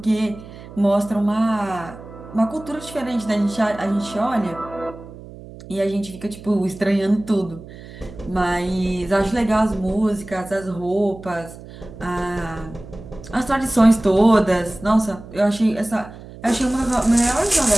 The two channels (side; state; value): right; noise; hum, 16 dB below the sound